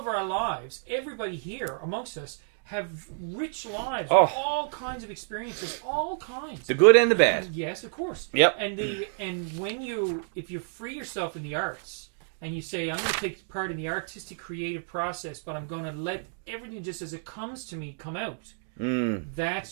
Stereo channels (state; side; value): silent; left; digital silence